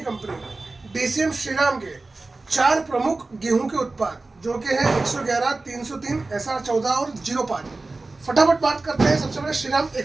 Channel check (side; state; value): left; quieter; 3.4 dB